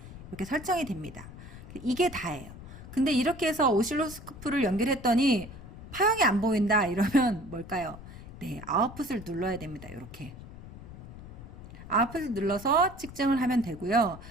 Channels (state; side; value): noise; left; rumble, 14 dB below the sound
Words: 이렇게 설정이 됩니다. 이게 다예요. 근데 이렇게 해서 오실로스코프를 연결했더니 파형이 안 보인다 이러면 뭘까요? 네, 아웃풋을 눌러야 됩니다. 이렇게 아웃풋을 눌러서 측정을 하면 되고요.